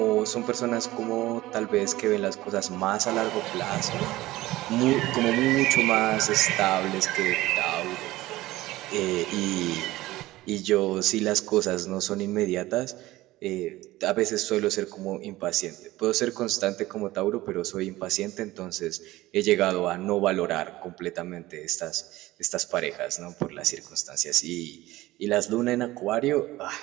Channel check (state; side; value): quieter; left; 17.5 dB